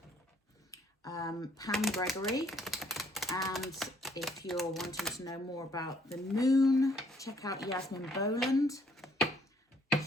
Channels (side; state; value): both; normal; correlation 0.64